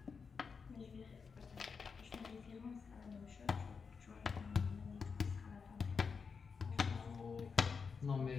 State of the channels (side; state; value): right; quieter; 5.5 dB